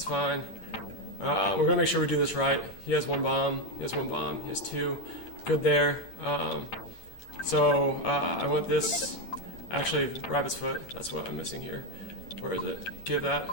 fine. We're gonna make sure we do this right. He has one bomb. He has one bomb. He has two. Good there. I want this. Actually, rabbit's foot. That's what I'm missing here. Where is it? Give that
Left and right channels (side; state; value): right; late; 8.9 ms